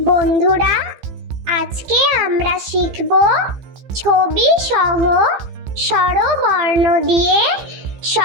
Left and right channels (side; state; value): left; late; 15 ms